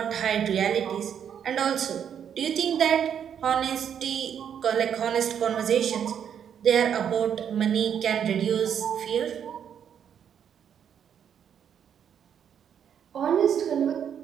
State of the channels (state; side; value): quieter; left; 8.5 dB